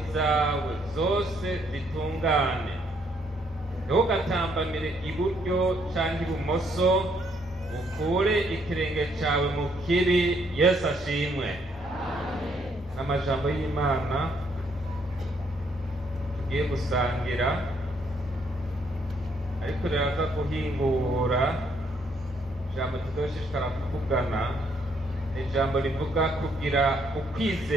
zawe zose zitungane. Ntugatambamire iburyo cyangwa ibumoso, ukure ikirenge cyawe mu kibi. Yesu ashimwe. Amajambo y'Imana tugiye gusangira, ariko riraza guhingura ijambo tuzoshishikara kuvugana. Ijambo rivuga kugira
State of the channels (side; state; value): both; normal; correlation 0.70